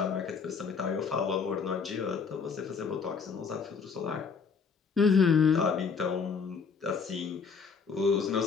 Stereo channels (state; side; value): quieter; right; 5.6 dB